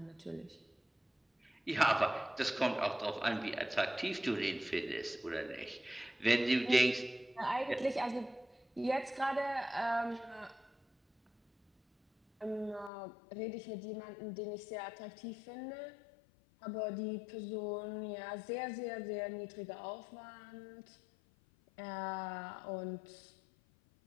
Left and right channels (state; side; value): drops out; right; at 12.9 s